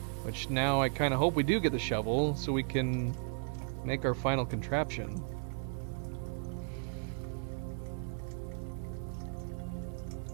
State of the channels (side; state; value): left; silent; 54 dB below the other